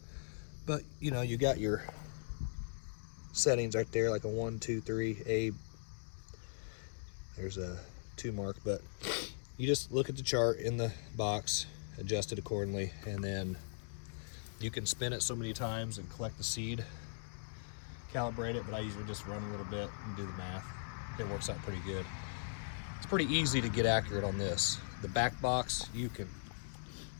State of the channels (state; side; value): silent; right; digital silence